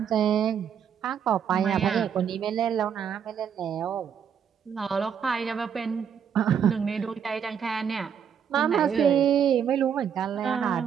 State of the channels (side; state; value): left; quieter; 7.8 dB